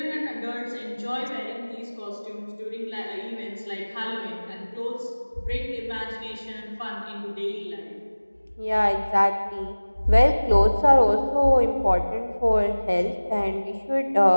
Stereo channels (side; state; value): both; inverted; correlation -1.00